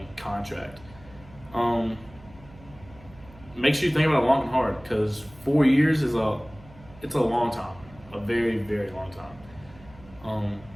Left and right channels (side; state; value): right; noise; hum, 22 dB below the sound